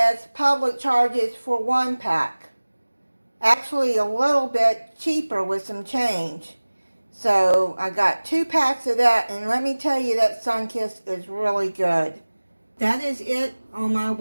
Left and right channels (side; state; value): both; inverted; correlation -1.00